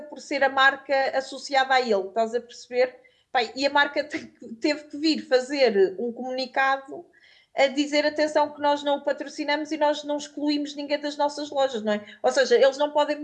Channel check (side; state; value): both; identical; correlation 1.00